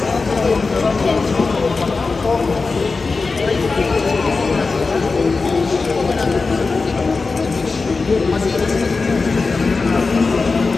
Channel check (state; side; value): quieter; right; 4.1 dB